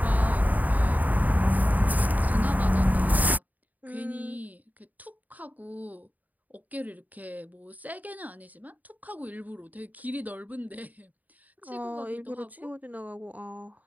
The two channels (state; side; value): late; left; 0.079 ms